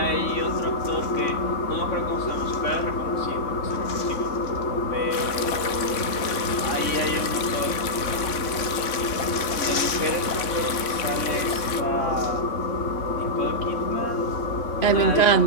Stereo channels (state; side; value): late; right; 3.5 ms